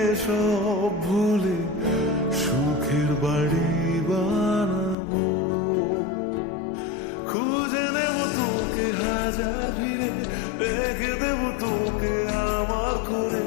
সব ভুলে সুখের বাড়ি বানাবো। খুঁজে নেব তোকে হাজার ভিড়ে, রেখে দেব তোকে আমার করে।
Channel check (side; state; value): right; drops out; at 5.0 s